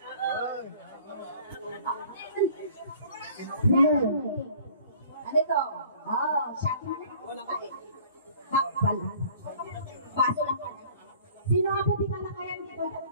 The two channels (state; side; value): inverted; both; correlation -0.51